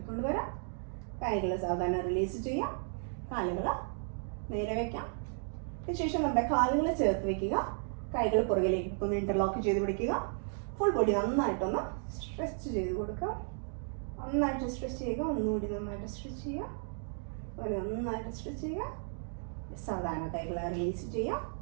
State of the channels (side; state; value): left; silent; 55 dB below the other